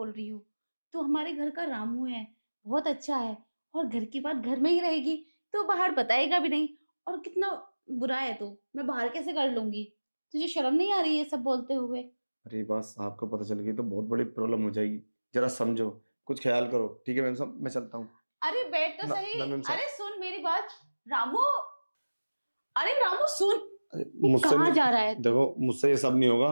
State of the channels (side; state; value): both; inverted; correlation -1.00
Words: रही हूँ। तू हमारे घर का रामू है, बहुत अच्छा है। और घर की बात घर में ही रहेगी, तो बाहर बताएगा भी नहीं। और कितना बुरा है तू, मैं बाहर कैसे कर लूंगी? तुझे शर्म नहीं आ रही है सब बोलते हुए? अरे बात साहब को पता चल गई तो बहुत बड़ी प्रॉब्लम हो जाएगी। जरा समझो, कुछ ख्याल करो। ठीक है मैम साहब, मैं चलता हूँ। अरे बैठ तो ना सही। ना मैम अरे साहब। सुन मेरी बात, रामू। अरे रामू सुन। अरे ये मुझसे कहाँ नहीं, जा रहा है तू? देखो मुझसे ये सब नहीं होगा।